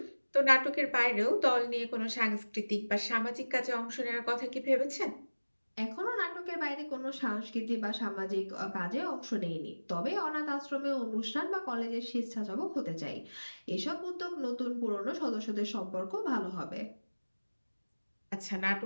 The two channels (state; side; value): inverted; both; correlation -1.00